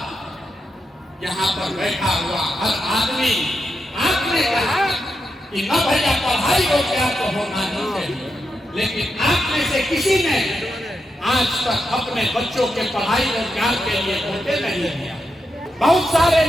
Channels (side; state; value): both; normal; correlation 0.85